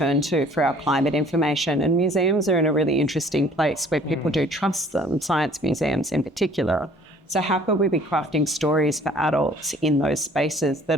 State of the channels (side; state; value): both; normal; correlation 0.54